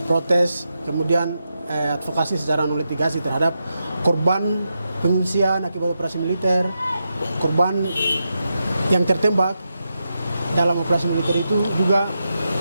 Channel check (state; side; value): inverted; both; correlation -0.87